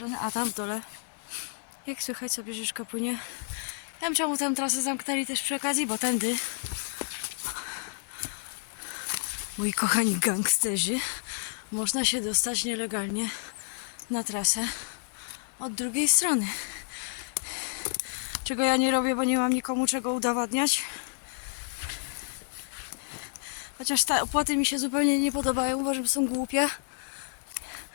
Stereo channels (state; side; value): silent; right; digital silence